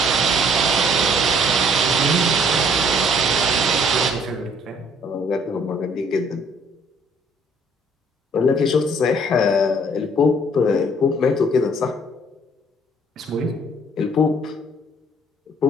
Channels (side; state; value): both; normal; correlation 0.60